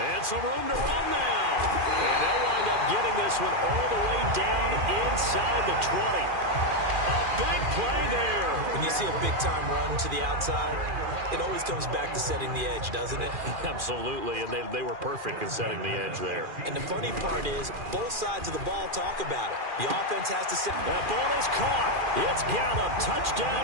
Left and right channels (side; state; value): left; late; 2.4 ms